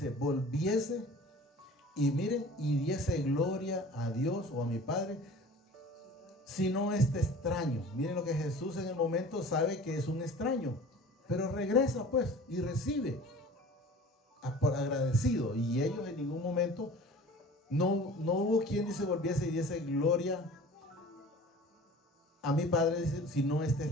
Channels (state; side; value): normal; both; correlation 0.43